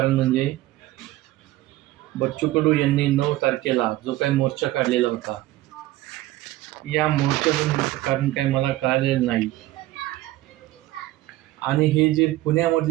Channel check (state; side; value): quieter; left; 16.3 dB